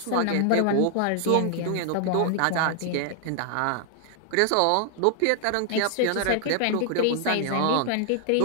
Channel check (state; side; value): different; both; correlation 0.00